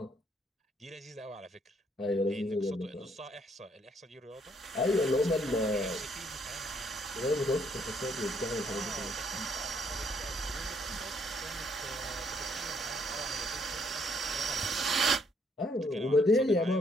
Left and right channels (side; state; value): both; normal; correlation 0.68